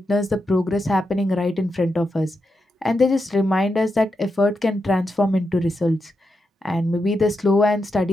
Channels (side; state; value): both; normal; correlation 0.86